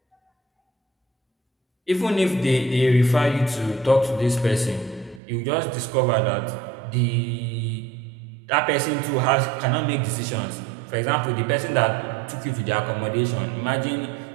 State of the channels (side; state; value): left; drops out; at 5.2 s